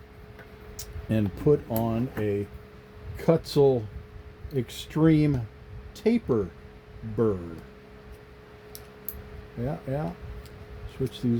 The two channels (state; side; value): identical; both; correlation 1.00